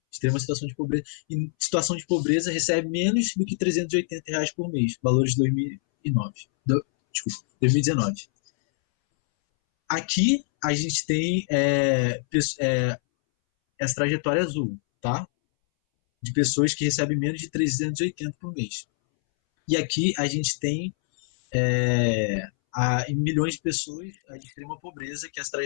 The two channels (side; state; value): right; silent; 62 dB below the other